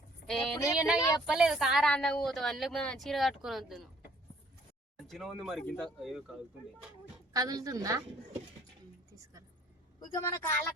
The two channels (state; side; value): normal; both; correlation 0.58